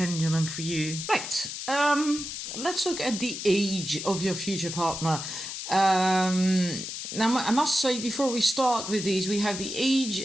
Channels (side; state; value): left; noise; hiss, 7 dB below the sound